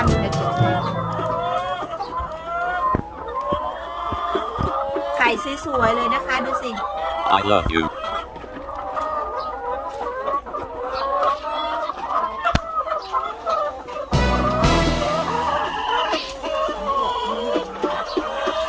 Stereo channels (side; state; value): both; identical; correlation 1.00